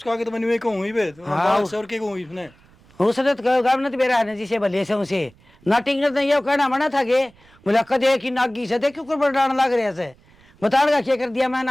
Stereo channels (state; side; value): noise; right; rumble, 29 dB below the sound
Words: आगे तो मैंने कहूं ही बे हाँ। बात से और के कहूं इसने उसने तो गांव ने बेरा ने जिसे भले से उसे नाटिंग ने ये कहना मना था के बोला कदे की नागी से देखो कर बड़ान लग रहे से बताड़ का क्या कर दिया मैं